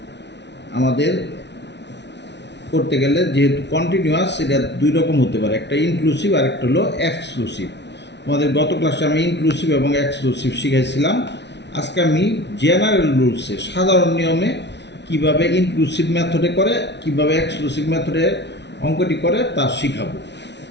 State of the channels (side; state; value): right; late; 0.50 ms